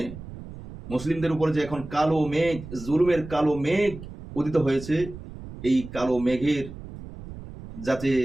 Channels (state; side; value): noise; right; rumble, 13 dB below the sound